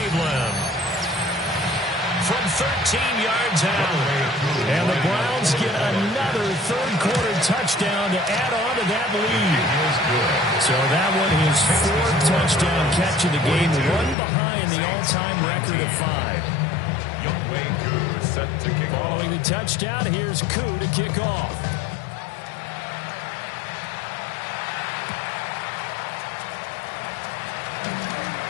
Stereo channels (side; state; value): right; drops out; at 14.2 s